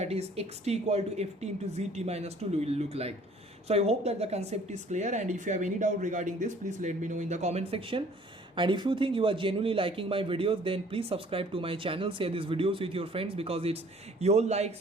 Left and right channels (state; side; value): normal; both; correlation 0.55